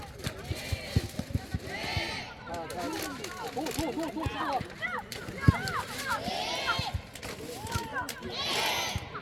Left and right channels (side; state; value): both; identical; correlation 1.00